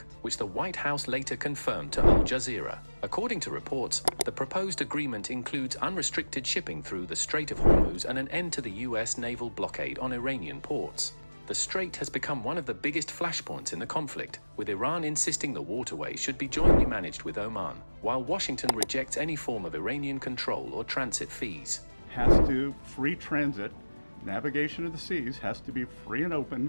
which the White House later confirmed to Al Jazeera. According to reports, the proposed agreement includes unrestricted shipping through the Strait of Hormuz and an end to the US naval blockade on Iranian ports. The strait has become one of the biggest flashpoints in the conflict, with Iran insisting the waterway should be jointly managed with Oman, while Washington rejects any form of Iranian control or transit fees. Free transit, navigation of the seas has to be free and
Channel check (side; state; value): both; inverted; correlation -1.00